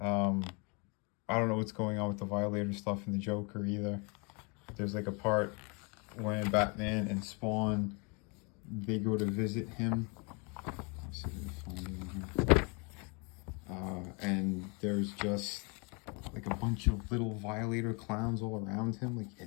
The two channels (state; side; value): quieter; right; 32.4 dB